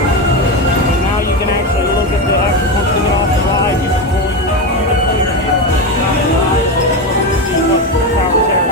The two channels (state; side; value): normal; both; correlation 0.16